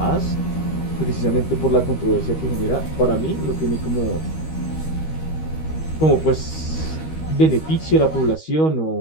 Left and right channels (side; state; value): right; late; 13 ms